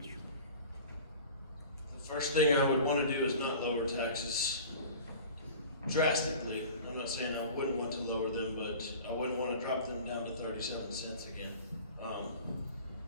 The first thing I would want to do is not lower taxes drastically. I'm not saying I wouldn't want to lower them, but I wouldn't want to drop them down to 37 cents again.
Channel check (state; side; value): inverted; both; correlation -0.40